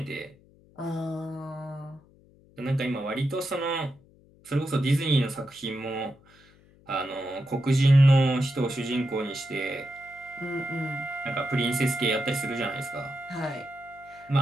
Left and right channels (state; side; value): noise; left; hum, 28 dB below the sound